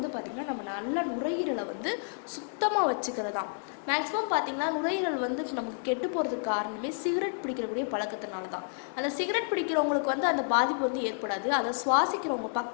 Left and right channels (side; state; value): right; silent; digital silence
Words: நம்ம நல்ல நுரையீரலை சுத்தமாக வச்சுக்கிறதா. மேக்ஸிமம் பார்த்திங்கன்னா நுரையீரல் நமக்கு கெட்டு போகிறதுக்கு காரணமே சிகரெட் பிடிக்கிறக்கூடிய பழக்கத்தினால தான். அந்த சிகரெட் பிடிக்கிறவங்களுக்கு அந்த பாதிப்பு ஏற்படாது. அதை சுவாசிக்கிறவங்க